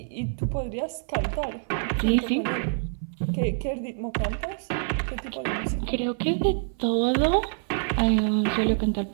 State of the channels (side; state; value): left; silent; 57 dB below the other